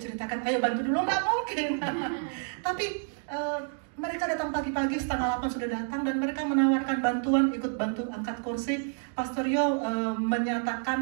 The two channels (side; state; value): left; silent; 59 dB below the other